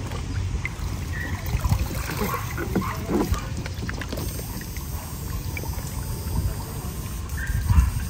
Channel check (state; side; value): identical; both; correlation 1.00